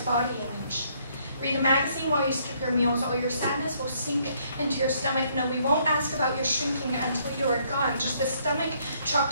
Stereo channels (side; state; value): both; inverted; correlation -0.68